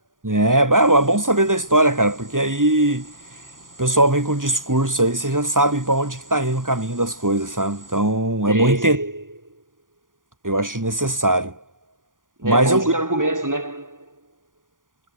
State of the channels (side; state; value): left; late; 0.89 ms